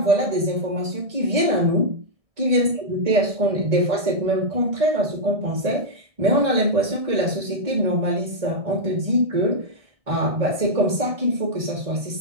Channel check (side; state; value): left; late; 1.6 ms